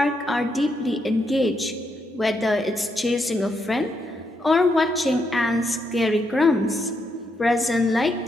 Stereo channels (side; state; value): both; normal; correlation 0.79